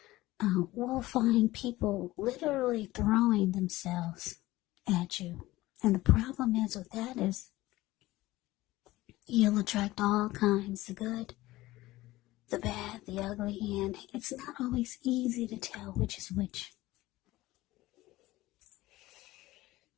will find people literally throwing themselves at you. And the problem is with that is you'll attract all kinds, the good, the bad, the ugly, and it's not always easy to tell which is which.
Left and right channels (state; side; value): quieter; right; 17.8 dB